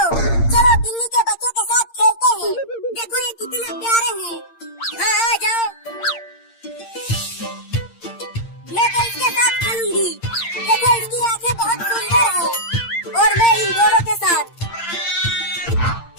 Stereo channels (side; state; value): right; late; 8.7 ms